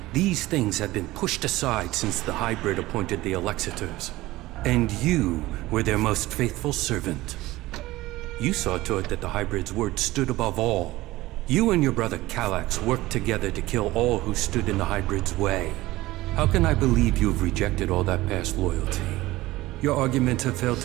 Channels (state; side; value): quieter; left; 18.1 dB